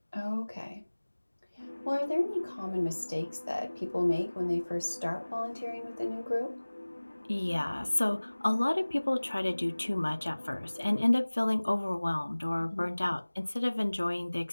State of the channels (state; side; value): inverted; both; correlation -1.00